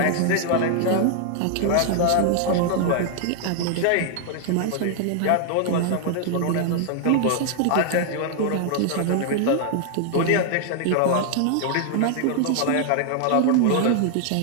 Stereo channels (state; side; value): different; both; correlation 0.00